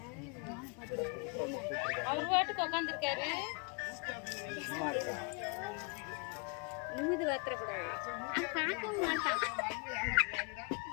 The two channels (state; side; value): quieter; right; 35.0 dB